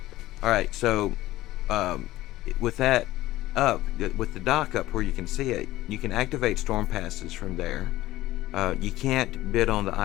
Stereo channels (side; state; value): right; quieter; 16.3 dB